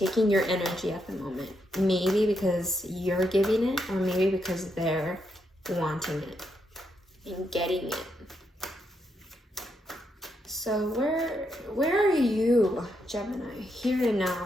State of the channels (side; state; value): both; normal; correlation 0.80